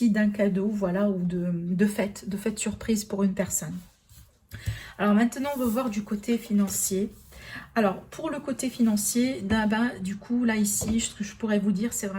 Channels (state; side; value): identical; both; correlation 1.00